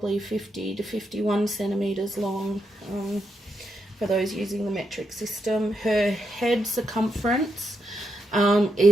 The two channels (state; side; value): normal; both; correlation 0.82